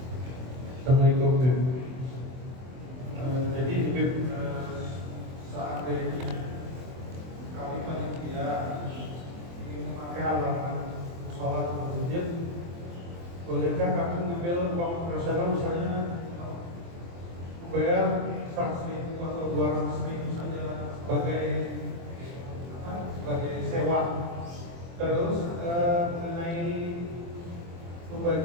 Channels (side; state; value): left; late; 23 ms